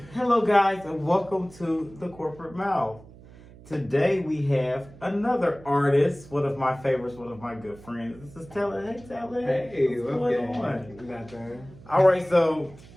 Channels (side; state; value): right; noise; hum, 21 dB below the sound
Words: Hello guys and welcome to the corporate mouth. Today we have another artist, one of my favorites, one of my good friends. This is Telid. Hey Telid. Hey, what's going on? Nothing. Alright, so